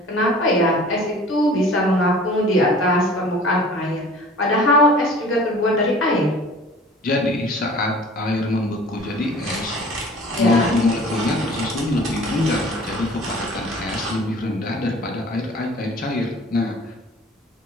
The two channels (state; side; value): normal; both; correlation 0.46